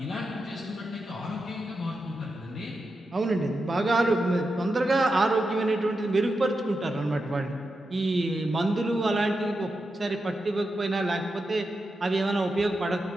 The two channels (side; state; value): both; normal; correlation 0.88